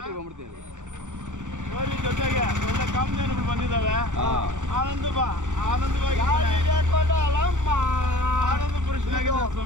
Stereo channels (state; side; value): late; left; 0.85 ms